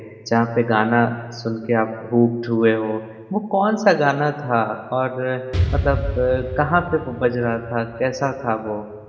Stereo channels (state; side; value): identical; both; correlation 1.00